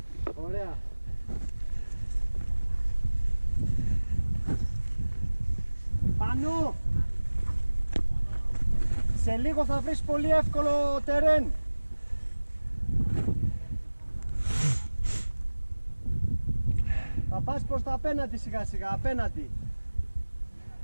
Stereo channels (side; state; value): both; inverted; correlation -1.00